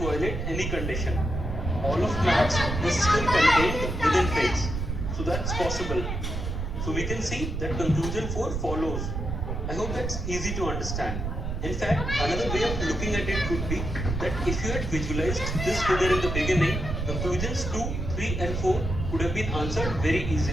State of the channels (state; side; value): noise; right; rumble, 3 dB below the sound